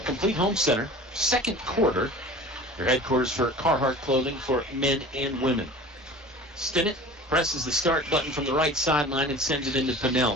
complete home center. Second quarter. Your headquarters for Carhartt clothing for men and women. Stinnett presses the start button from the right sideline and sends it into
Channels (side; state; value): both; normal; correlation 0.40